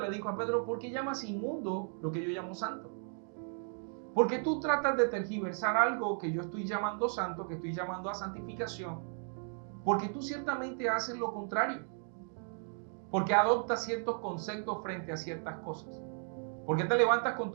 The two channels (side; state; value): left; silent; 54 dB below the other